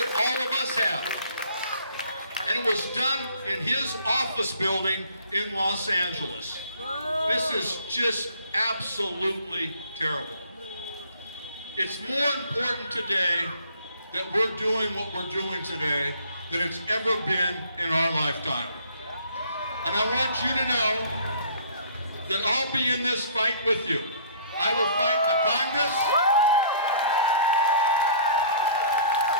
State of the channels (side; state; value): both; inverted; correlation -0.54